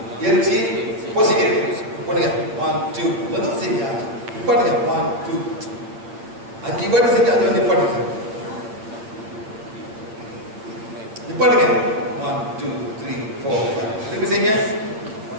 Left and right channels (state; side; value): late; left; 8.9 ms